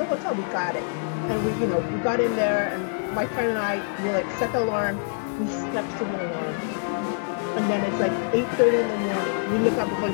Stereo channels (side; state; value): right; silent; 60 dB below the other